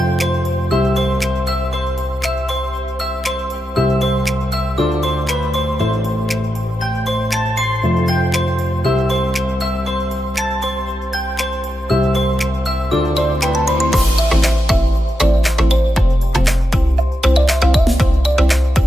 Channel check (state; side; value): normal; both; correlation 0.87